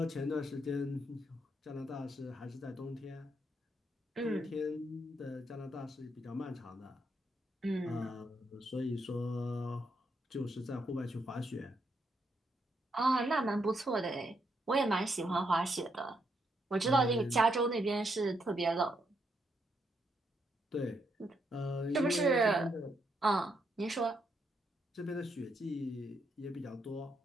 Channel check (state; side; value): normal; both; correlation 0.78